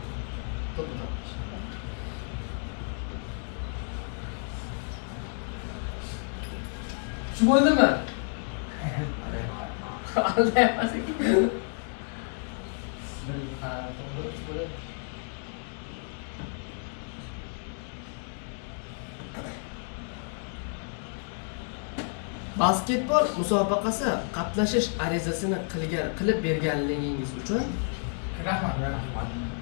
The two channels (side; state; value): right; silent; 56 dB below the other